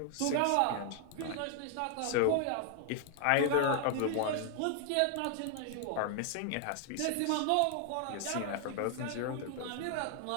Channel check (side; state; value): both; different; correlation 0.00